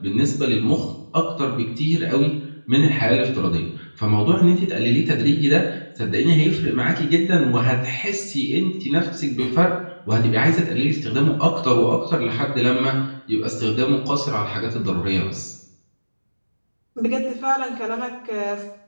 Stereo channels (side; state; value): both; inverted; correlation -1.00